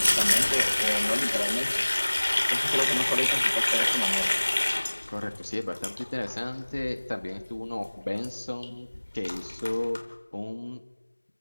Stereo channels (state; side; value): inverted; both; correlation -1.00